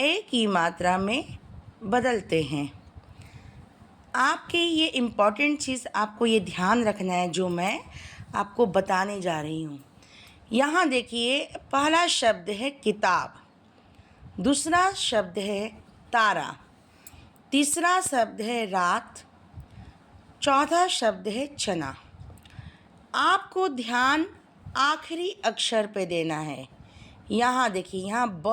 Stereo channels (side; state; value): both; identical; correlation 1.00